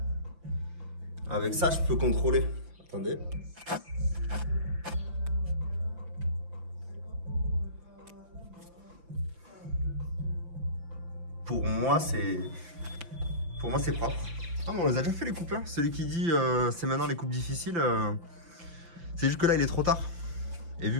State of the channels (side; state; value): left; late; 5.9 ms